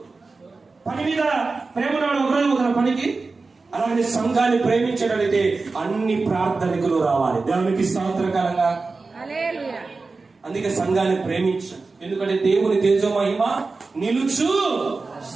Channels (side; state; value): left; quieter; 3.9 dB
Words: పని మీద ప్రేమ ఉన్నవాడు ఒకరోజు పోతాడు పనికి. అలాగే సంఘాన్ని ప్రేమించగలిగితే అన్ని ప్రార్థనకులు రావాలి. దేవునికి స్తోత్రకరంగా. అందుకే సంఘాన్ని ప్రేమించు. ఎందుకంటే దేవుని తేజో మహిమ నిలుచు